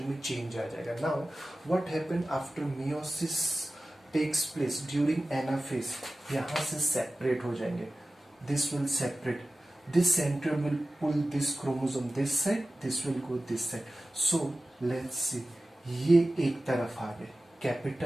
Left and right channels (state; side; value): normal; both; correlation 0.96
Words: में चेंज आ जाएगा. Now what happen after meiosis takes place during anaphase, यहाँ से सेपरेट हो जाएंगे. This will separate. This center will pull this chromosome this side. This will go this side. So let's see. ये एक तरफ आ गए,